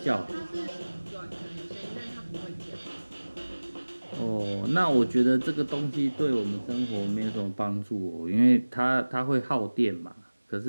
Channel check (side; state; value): both; inverted; correlation -1.00